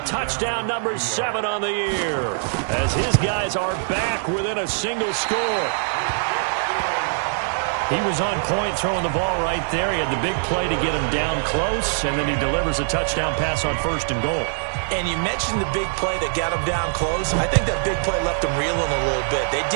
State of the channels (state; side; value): silent; left; digital silence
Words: touchdown number 7 on the year, as his guys are back within a single score. He was on point throwing the ball right there. He had the big play to get him down close, and then he delivers a touchdown pass on 1st and goal. And you mentioned the big play that got him down close. I think that big play left him reeling a little bit. They